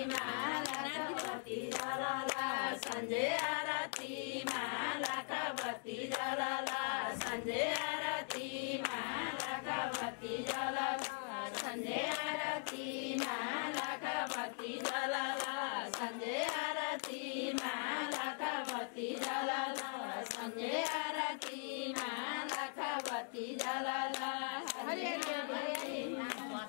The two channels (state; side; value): silent; right; 51 dB below the other